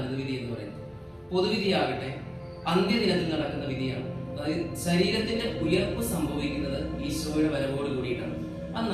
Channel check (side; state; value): both; identical; correlation 1.00